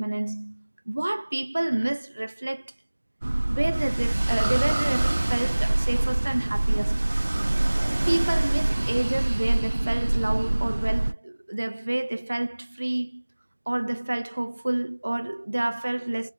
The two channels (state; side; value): inverted; both; correlation -1.00